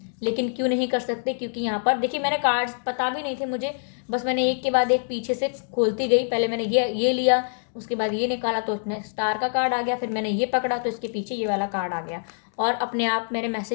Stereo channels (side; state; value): right; silent; digital silence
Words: लेकिन क्यों नहीं कर सकते? क्योंकि यहाँ पर देखिए, मैंने कार्ड्स पता भी नहीं थे मुझे, बस मैंने एक के बाद एक पीछे से खोलती गई। पहले मैंने ये लिया, उसके बाद ये निकाला तो उसमें स्टार का कार्ड आ गया, फिर मैंने ये पकड़ा तो इसके पीछे ये वाला कार्ड आ गया, और अपने आप मैंने